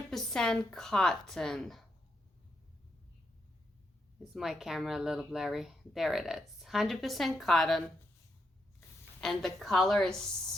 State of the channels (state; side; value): normal; both; correlation 0.81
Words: cotton. Is my camera a little blurry? There it is. 100% cotton. And the color is